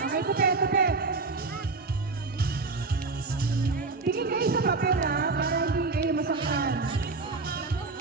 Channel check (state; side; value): quieter; left; 3.9 dB